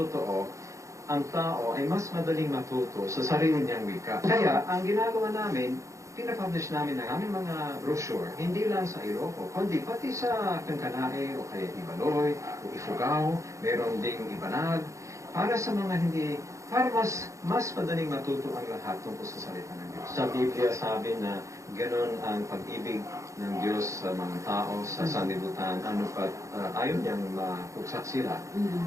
ang tao ay mas madaling matuto sa sarili niyang wika. Kaya, ang ginagawa namin, pinapublish namin ang aming mga brochure, hindi lang sa Ilocos, kundi pati sa Kankanae, o kaya Ibaloy, o Ifugao, meron ding Ibanag, para sa mga para mas madaling matuto ang lahat tungkol sa salita ng Diyos. Sa Biblia sabi na ganon ang pag-ibig ng Diyos sa mga tao, sa sanlibutan, ayaw niyang mapugsak sila.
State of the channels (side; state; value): left; late; 0.15 ms